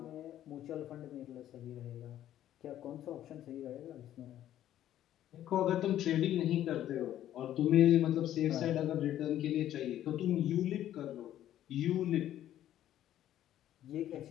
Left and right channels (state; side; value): quieter; right; 12.1 dB